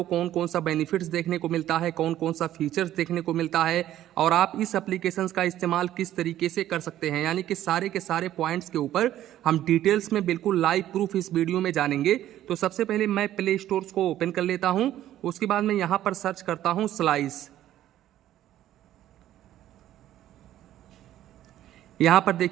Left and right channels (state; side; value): quieter; left; 12.7 dB